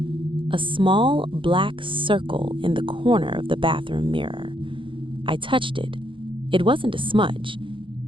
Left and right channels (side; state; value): left; late; 0.25 ms